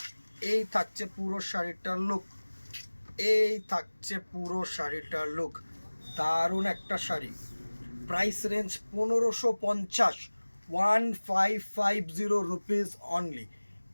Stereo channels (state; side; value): inverted; both; correlation -1.00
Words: এই থাকছে পুরো শাড়িটার লুক, এই থাকছে পুরো শাড়িটার লুক, দারুণ একটা sari. Price range 1550, 1550 rupees only.